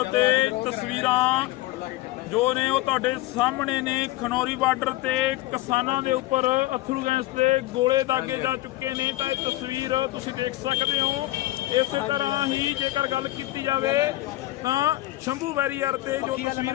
ਤੇ ਤਸਵੀਰਾਂ ਜੋ ਨੇ ਉਹ ਤੁਹਾਡੇ ਸਾਹਮਣੇ ਨੇ। ਖਨੌਰੀ ਬਾਰਡਰ ਤੇ ਕਿਸਾਨਾਂ ਦੇ ਉੱਪਰ ਅੱਥਰੂ ਗੈਸ ਤੇ ਗੋਲੇ ਦਾਗੇ ਜਾ ਚੁੱਕੇ ਨੇ। ਤਾਂ ਇਹ ਤਸਵੀਰ ਤੁਸੀਂ ਦੇਖ ਸਕਦੇ ਹੋ। ਇਸੇ ਤਰ੍ਹਾਂ ਹੀ ਜੇਕਰ ਗੱਲ ਕੀਤੀ ਜਾਵੇ ਤਾਂ ਸ਼ੰਭੂ ਬੈਰੀਅਰ ਤੇ ਜੋ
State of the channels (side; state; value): right; quieter; 17.5 dB